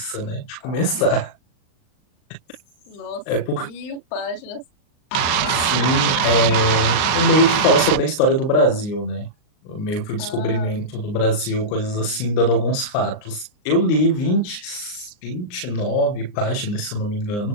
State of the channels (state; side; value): late; right; 39 ms